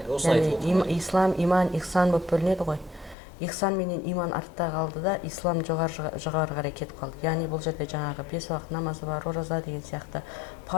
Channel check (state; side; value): drops out; right; at 3.2 s